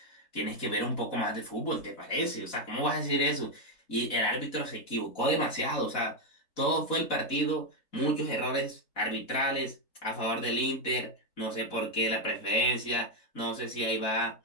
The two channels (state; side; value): late; right; 4.0 ms